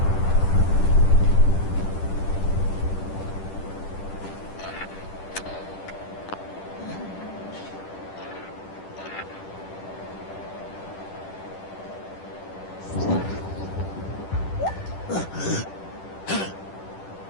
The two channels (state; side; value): late; right; 10 ms